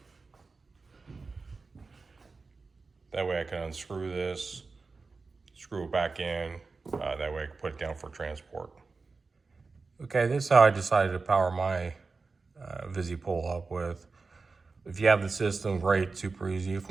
That way I can unscrew this, screw it back in. That way I can put it down for transport. Okay, this is how I decided to power my VisiPole up with. If you have the system, great, super easy. If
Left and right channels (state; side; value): quieter; left; 4.2 dB